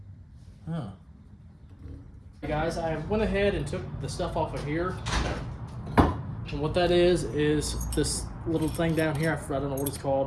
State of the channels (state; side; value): identical; both; correlation 1.00